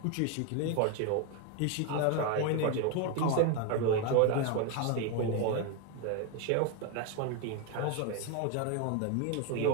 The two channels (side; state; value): both; different; correlation 0.01